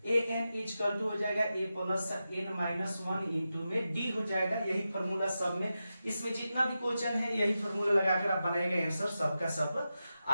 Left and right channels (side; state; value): both; inverted; correlation -0.91